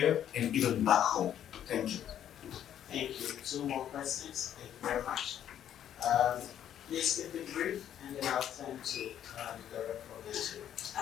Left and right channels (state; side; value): quieter; right; 10.3 dB